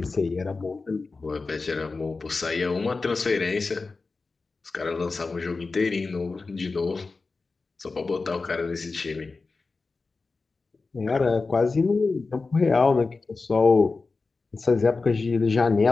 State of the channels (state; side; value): quieter; right; 4.0 dB